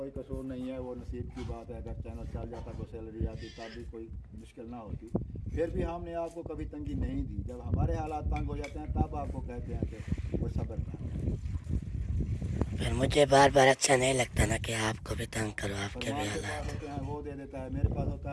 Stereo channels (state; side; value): identical; both; correlation 1.00